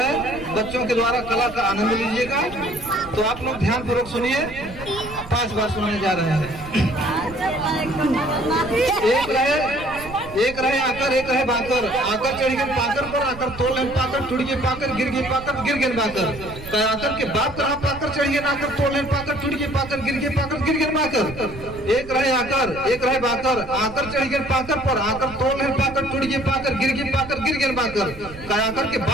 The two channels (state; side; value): noise; right; rumble, 15 dB below the sound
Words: बच्चों के द्वारा कला का आनंद लीजिएगा। तो आप लोग ध्यान पूर्वक सुनिए, 5 बार सुनाने जा रहे हैं। एक रहे आकर एक रहे बाकर, आकर चढ़ गए पाकर पर, आकर तोड़ लहन पाकर, टूट गए पाकर, गिर गए पाकर, गिर गए बाकर। कराकर के बाप रहा पाकर, चढ़ गए नाकर, तोड़ लहन पाकर, टूट गए पाकर, गिर गए पाकर, गिर गए बाकर। एक रहे आकर एक रहे बाकर, आकर चढ़ गए पाकर पर, आकर तोड़ लहन पाकर, टूट गए पाकर, गिर गए पाकर, गिर गए बाकर। कराकर के